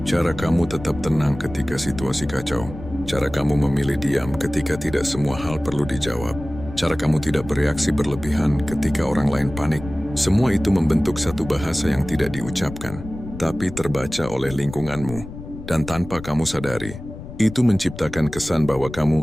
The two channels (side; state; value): left; noise; rumble, 12 dB below the sound